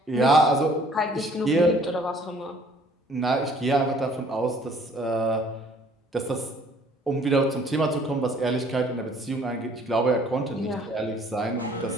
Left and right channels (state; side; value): normal; both; correlation 0.57